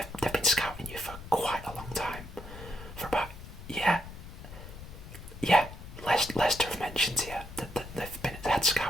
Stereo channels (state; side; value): noise; left; rumble, 13 dB below the sound